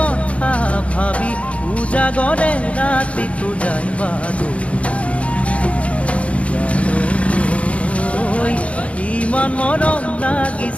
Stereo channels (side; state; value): right; late; 0.063 ms